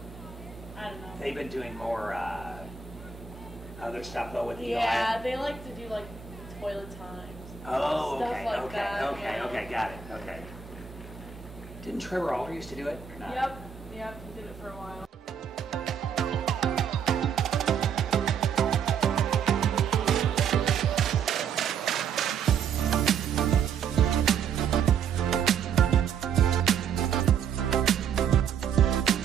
I don't know. They've been doing more other stuff though with the Yeah, they like to do like toilet times. Oh, stuff okay, like okay, that, okay, yeah. okay, got it, okay. Didn't Trevor Alder used to do it or not? Yep, he did it for a while.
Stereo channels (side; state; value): left; quieter; 6.8 dB